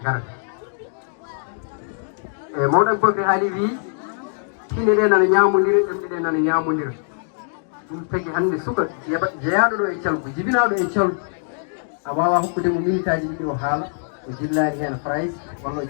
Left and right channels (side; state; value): right; silent; digital silence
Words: garata e mawɗo Aboubacry haali wi tine ɗe nana ñamodira ɗemɗe ɗe nana ñamodira ɗum tagui hande suka jeeyaɗo ɗo e Thialgou jibinaɗo e Thialgou a wawa hokkude mo minute aji ɗiɗi o haala o jillani hen phrase walla o